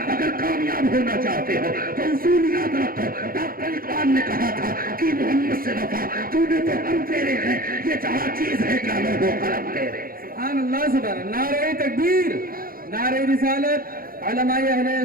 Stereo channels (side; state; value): left; late; 0.42 ms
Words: अगर कामयाब होना चाहते हो तो उसूल याद रखो। डॉक्टर इकबाल ने कहा था कि मोहम्मद से वफा, तूने तो हम तेरे हैं, ये जहां चीज है क्या लोगों कलम तेरे। सुभान अल्लाह, सुभान। नारे तकबीर, नारे रिसालत, उलमाए अहले